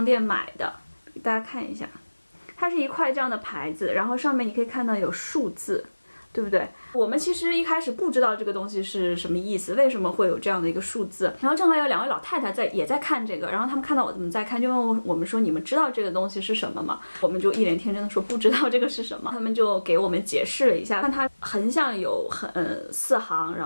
店买的，给大家看一下，它是一块这样的牌子，然后上面你可以看到有数字，对不对？我们其实一开始不知道这个东西是什么意思，为什么会有这样的一个数字。然后正好有2位老太太也在看这个，然后他们看到我怎么在看，就问我们说你们知道这个东西是什么吗？我们就一脸天真的说不知道这个是什么。他们就给我们解释了一下，看它横向有4行，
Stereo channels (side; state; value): both; inverted; correlation -1.00